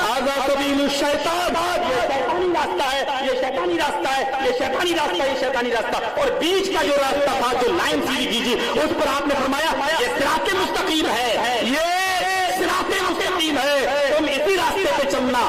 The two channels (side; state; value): both; identical; correlation 1.00